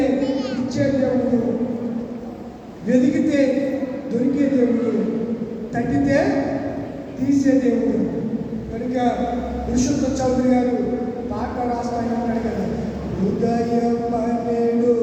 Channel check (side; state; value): both; identical; correlation 1.00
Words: ఇచ్చే దేవుడు, వెతికితే దొరికే దేవుడు, తట్టితే తీసే దేవుడు. కనుక పురుషోత్తం చౌదరి గారు పాట రాస్తాయి అంటాడు కదా, ఉదయం పన్నెండు